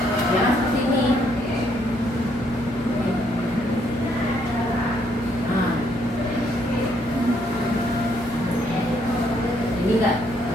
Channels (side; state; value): both; normal; correlation 0.71